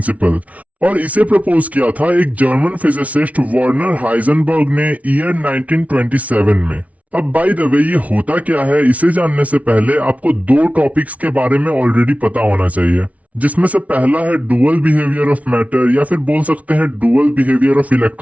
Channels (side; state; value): left; late; 0.068 ms